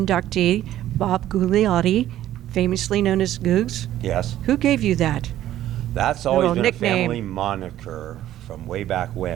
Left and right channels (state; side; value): quieter; left; 12.9 dB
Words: Bob Gugliotti, famously known as Googs. Yes, Who gave you that? that's Little always been nickname. a family moniker from way back